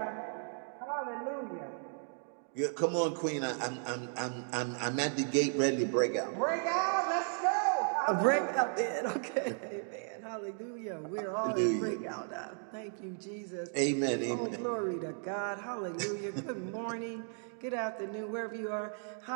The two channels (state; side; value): silent; left; 54 dB below the other